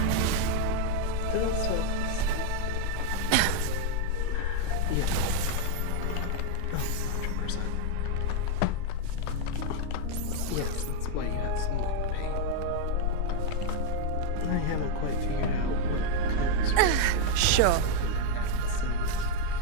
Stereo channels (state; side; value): different; both; correlation 0.00